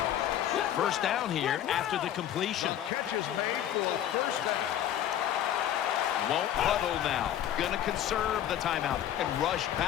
First down here after the completion. Won't huddle now. Going to conserve the timeout and rush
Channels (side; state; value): right; quieter; 11.1 dB